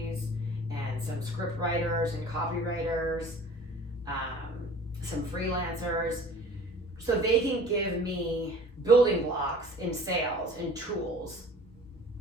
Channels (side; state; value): both; normal; correlation 0.46